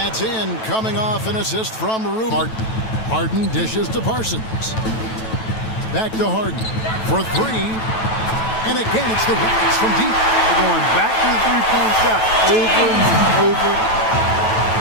in, coming off an assist from Ruben. Harden dishes to Parsons. Back to Harden for 3. And again, it's the Rockets from deep. They're going back to the three-point shot over and over.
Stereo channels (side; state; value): right; late; 9.1 ms